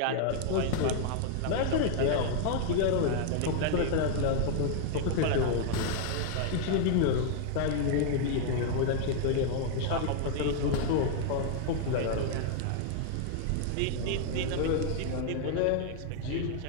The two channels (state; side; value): different; both; correlation 0.00